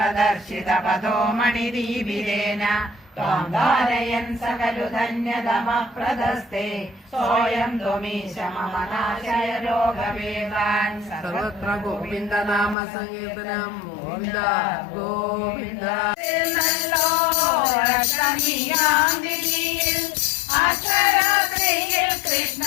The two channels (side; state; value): right; drops out; at 12.8 s